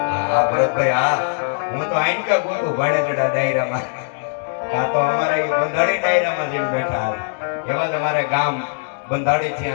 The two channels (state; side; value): silent; right; digital silence